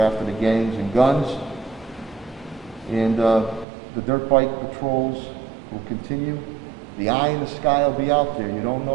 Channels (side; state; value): left; drops out; at 3.7 s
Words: the gangs and guns. And the dirt bike patrols will continue. The eye in the sky will be out there. You don't